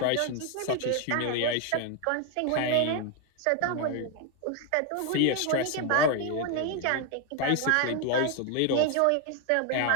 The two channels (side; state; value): both; different; correlation 0.01